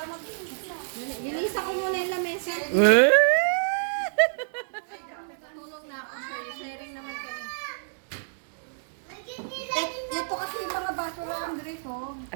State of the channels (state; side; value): silent; left; digital silence